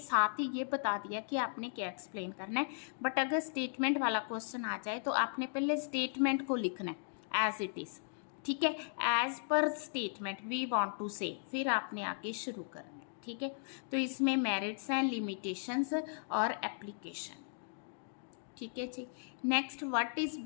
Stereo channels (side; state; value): right; silent; digital silence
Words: ही ये बता दिया कि आपने क्या एक्सप्लेन करना है, बट अगर स्टेटमेंट वाला क्वेश्चन आ जाए तो आपने पहले स्टेटमेंट को लिखना है एज इट इज। ठीक है, as per statement we want to से, फिर आपने आगे शुरू करना है। ठीक है, तो इसमें मेरिट्स हैं, लिमिटेशंस और एप्लीकेशन। ठीक है जी, next what is